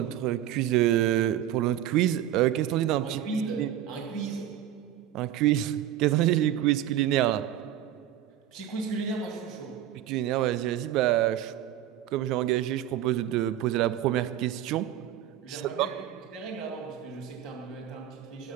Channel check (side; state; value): left; quieter; 11.5 dB